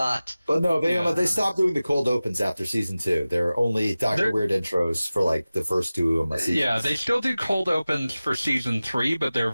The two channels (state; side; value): inverted; both; correlation -0.97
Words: But no, Yeah. they stopped doing the cold opens after season 2. There are only Dr. They're- Weird intros for like the first 2 seasons. Yeah, they still do cold opens for season 3, but they're